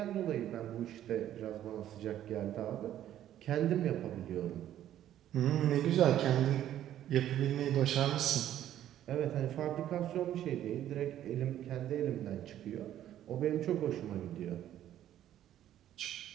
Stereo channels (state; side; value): quieter; left; 11.8 dB